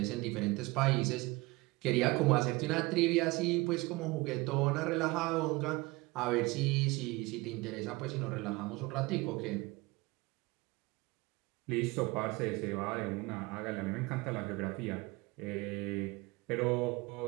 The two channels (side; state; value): left; quieter; 23.0 dB